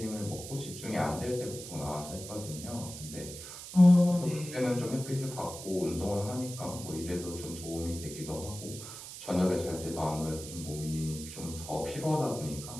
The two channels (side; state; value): right; noise; hiss, 11 dB below the sound